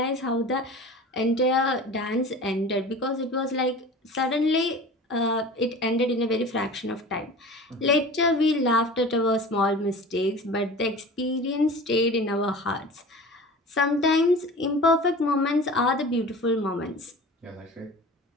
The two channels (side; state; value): both; normal; correlation 0.38